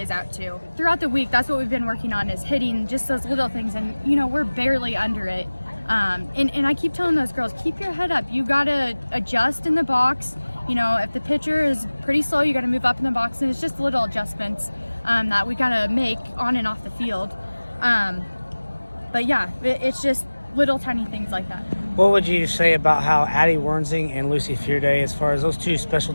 out too. Throughout the week, that's what we've been working on, is hitting just those little things, and you know, we're barely under it. And I keep telling those girls, keep your head up. You got to adjust in the box. You know, if the pitcher is pretty slow, you got to move up in the box, and it's just little adjustments that we got to make on and off the field. But yeah, it's just little tiny things like that. What would you say about how Addie Wernsing and Lucy Fearday, as far as those two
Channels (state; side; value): inverted; both; correlation -1.00